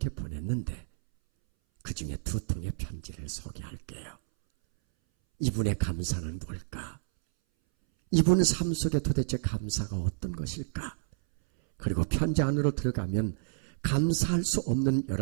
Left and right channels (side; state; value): left; silent; 58 dB below the other